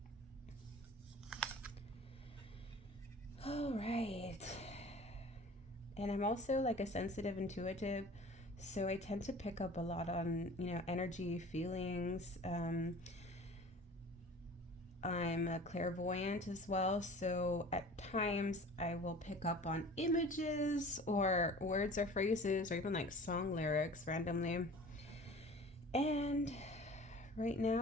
All right. And I'm also like a sensitive intuitive, so I tend to pick up a lot on energy, feelings. I'm a clairvoyant as well, so at times I will pick up on images or words or phrases, or even like song lyrics randomly. And right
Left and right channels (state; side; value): normal; both; correlation 0.43